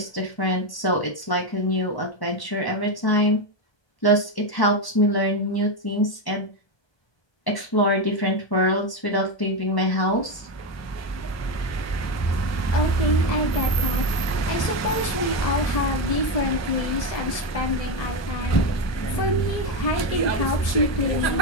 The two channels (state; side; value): late; right; 1.2 ms